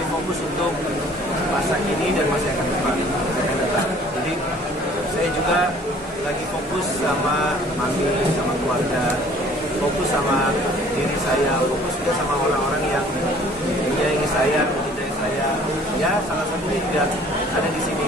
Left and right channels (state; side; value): normal; both; correlation 0.54